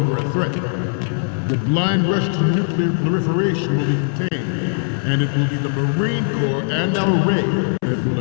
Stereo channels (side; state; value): right; silent; 66 dB below the other